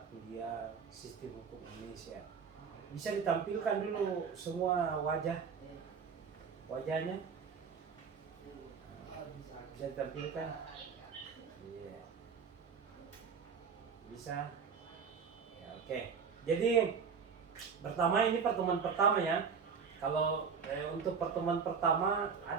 kuliah Sistem Hukum Indonesia. Bisa ditampilkan dulu semua wajahnya, bisa ditampilkan. Iya, bisa ya, oke. Jadi ini pertemuan pertama ya. Kalau untuk pertemuan pertama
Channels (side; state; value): left; quieter; 6.1 dB